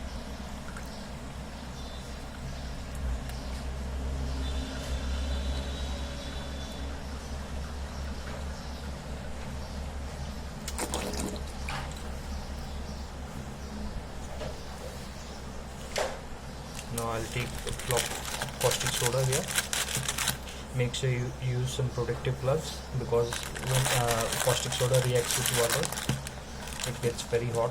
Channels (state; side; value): identical; both; correlation 1.00